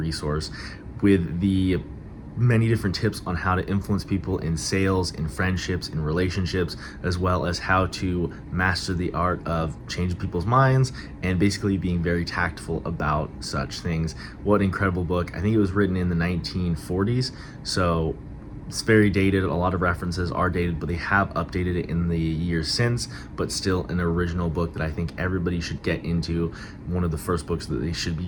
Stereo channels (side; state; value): both; identical; correlation 1.00